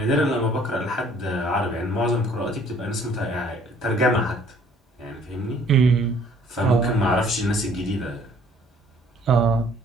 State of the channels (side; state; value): both; normal; correlation 0.58